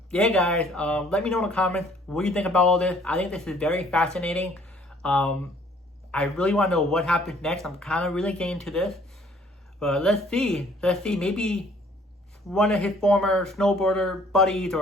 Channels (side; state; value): both; normal; correlation 0.59